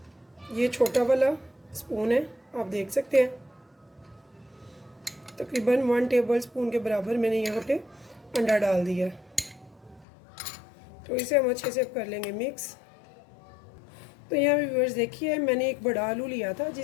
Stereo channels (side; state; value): right; drops out; at 10.1 s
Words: ये छोटा वाला स्पून है, आप देख सकते हैं, तकरीबन 1 टेबल स्पून के बराबर मैंने यहाँ पे अंडा डाल दिया। तो इसे हम अच्छे से कर लेंगे मिक्स। तो यहाँ व्यूअर्स देखिए, मैंने एक बड़ा आलू लिया था